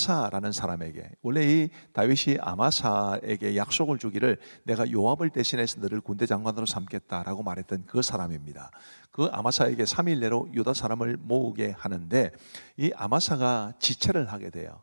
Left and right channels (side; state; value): both; inverted; correlation -1.00